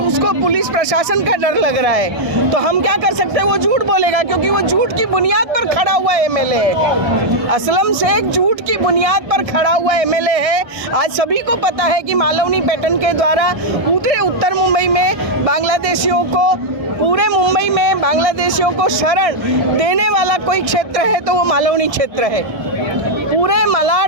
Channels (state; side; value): late; left; 1.6 ms